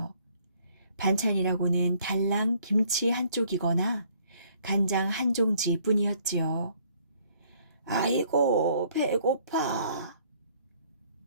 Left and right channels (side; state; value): both; inverted; correlation -0.63